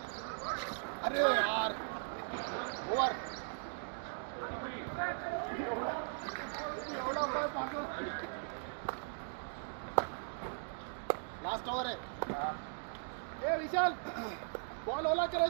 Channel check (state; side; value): silent; left; digital silence